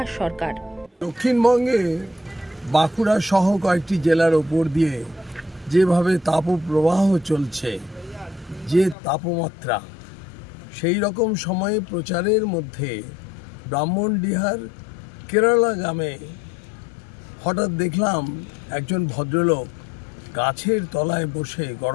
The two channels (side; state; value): right; drops out; at 9.0 s